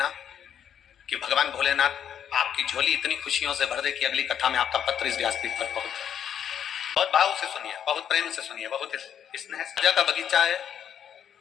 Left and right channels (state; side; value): quieter; right; 9.0 dB